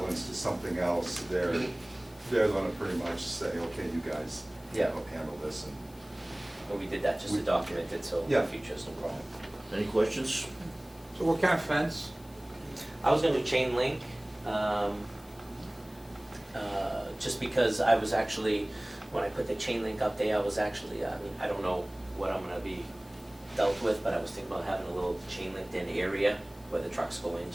to something else, they're gonna pretty much say, okay, you guys, you Yeah. know, handle this. And But we did that just to document it, so in Yeah. the future, it's no problem. Any questions? So what kind of fence? I was gonna do chain link, just because I was actually, when I put the chain link up there, I was actually, I mean, I don't know what I'm gonna be dealt with, but I was thinking about having a little chain linked in area where the trucks go in,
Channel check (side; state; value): left; noise; hiss, 25 dB below the sound